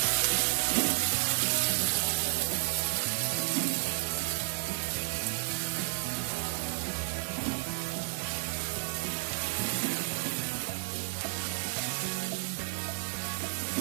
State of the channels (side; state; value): left; silent; digital silence